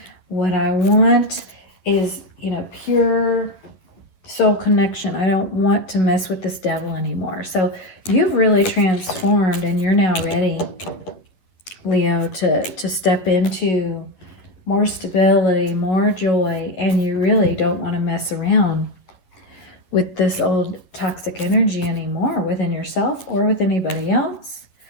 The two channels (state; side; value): late; right; 10 ms